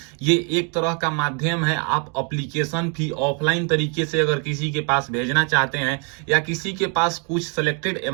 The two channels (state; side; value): quieter; left; 36.9 dB